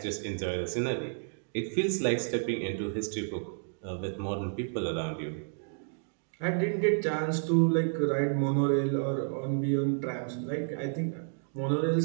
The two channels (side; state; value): left; silent; digital silence